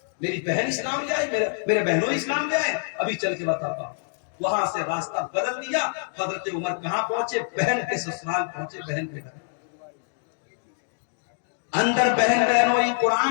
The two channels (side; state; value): right; silent; 61 dB below the other